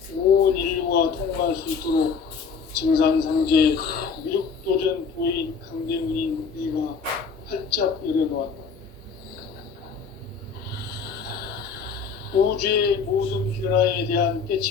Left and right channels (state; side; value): quieter; right; 5.6 dB